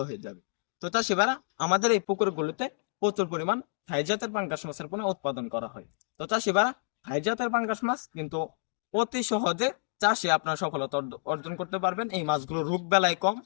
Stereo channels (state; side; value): silent; right; digital silence